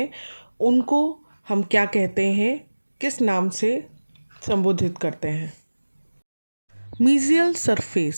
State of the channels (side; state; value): both; inverted; correlation -1.00